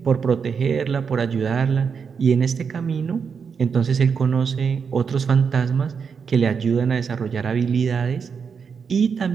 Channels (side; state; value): left; quieter; 6.2 dB